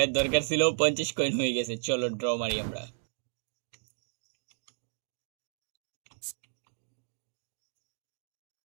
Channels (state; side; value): silent; left; digital silence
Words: দরকার ছিল, 50 কয়েন হয়ে গেছে। চলো ড্র মারি আমরা।